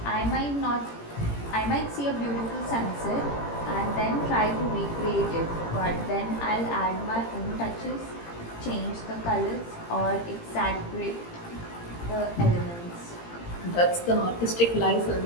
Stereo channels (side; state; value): right; late; 17 ms